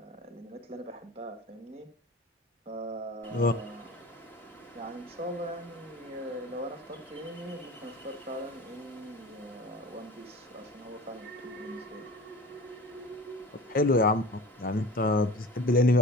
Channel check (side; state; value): both; normal; correlation 0.38